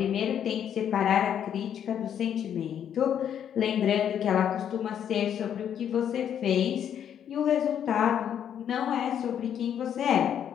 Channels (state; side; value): quieter; right; 9.2 dB